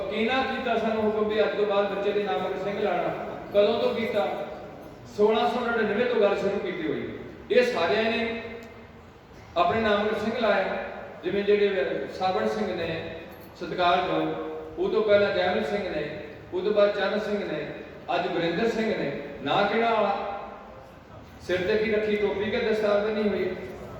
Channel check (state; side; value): identical; both; correlation 1.00